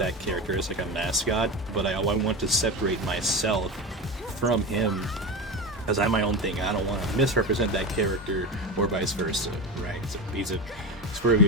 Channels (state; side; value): normal; both; correlation 0.23